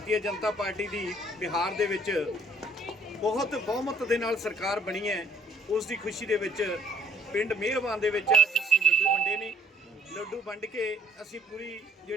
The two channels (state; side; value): normal; both; correlation 0.62